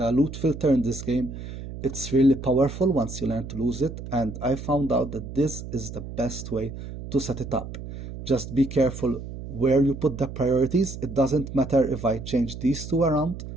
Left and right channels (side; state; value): right; noise; hum, 10 dB below the sound